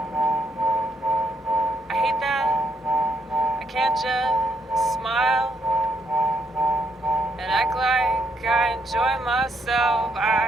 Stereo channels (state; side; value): normal; both; correlation 0.74